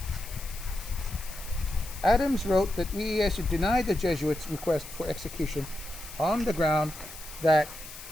Adams wrote that Ieyasu denied the Jesuits' request for execution on the ground that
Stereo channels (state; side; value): noise; left; hiss, 14 dB below the sound